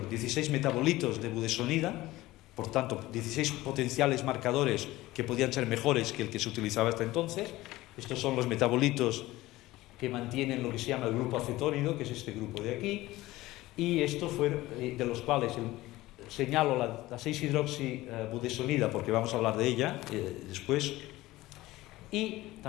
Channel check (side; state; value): right; quieter; 17.8 dB